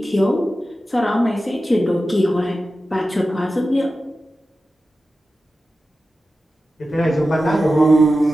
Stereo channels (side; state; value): both; normal; correlation 0.93